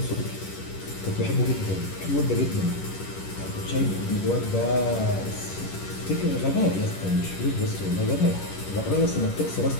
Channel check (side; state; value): right; late; 11 ms